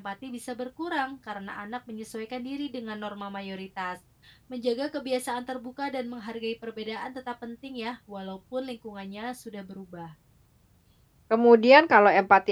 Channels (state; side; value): identical; both; correlation 1.00